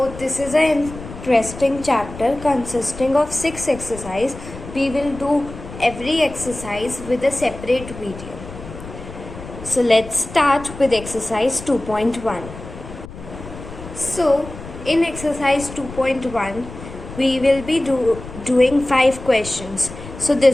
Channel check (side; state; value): left; noise; rumble, 13 dB below the sound